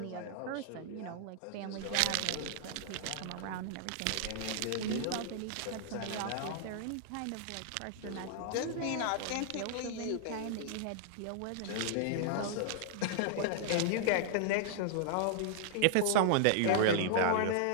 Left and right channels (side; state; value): both; different; correlation -0.01